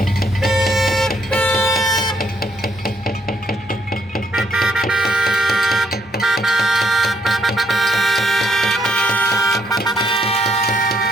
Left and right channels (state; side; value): normal; both; correlation 0.71